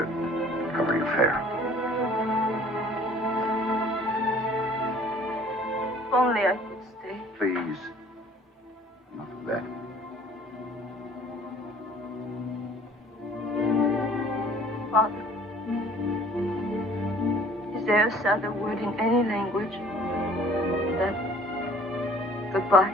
cover your fare. If only I could stay. Please, enough of that. Father, is there a sadder word in any language than goodbye?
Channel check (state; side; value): normal; both; correlation 0.53